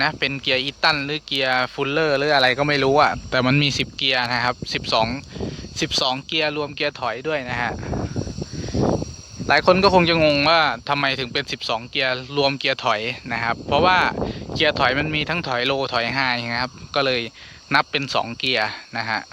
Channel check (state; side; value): identical; both; correlation 1.00